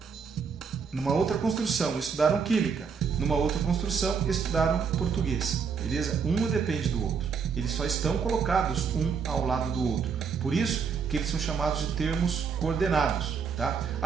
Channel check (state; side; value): quieter; left; 6.1 dB